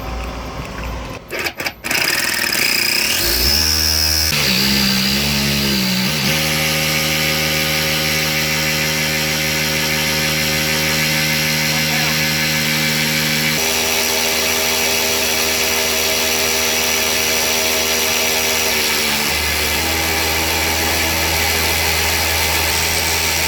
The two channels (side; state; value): both; identical; correlation 1.00